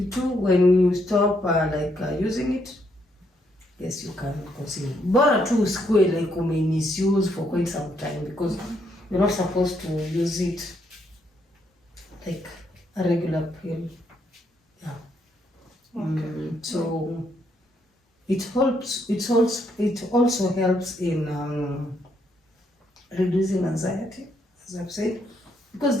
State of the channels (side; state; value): both; normal; correlation 0.75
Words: when you stop using it, yes, you can conceive. Bora tu usikue like misuse for quite some time, because you're not supposed to use it like a regular pill. Yeah. Okay. So it helps. It also helps in reducing anxiety, as I've said, because